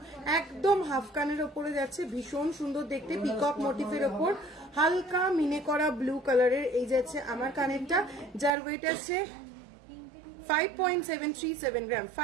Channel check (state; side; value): drops out; left; at 8.5 s